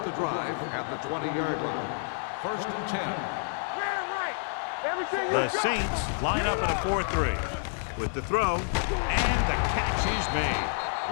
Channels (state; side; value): silent; right; digital silence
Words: the drive at the 20-yard line. 1st and 10. The Saints line up in a 4-3 with the throw, and the catch is made.